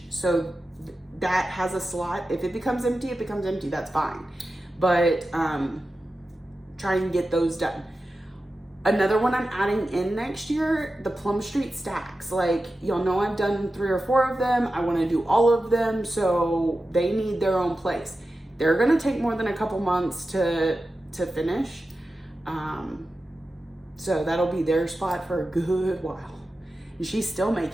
So that has a slot. If it becomes empty, it becomes empty, that's fine. But try and get those done. Another one I'm adding in next year, the Plum Street stacks. Like, y'all know I've done 3 or 4 of them. I wanna do all of them, so they need their own place. They're gonna take more than a couple months to finish. So that'll be their spot for a good while. And she's still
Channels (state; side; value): normal; both; correlation 0.93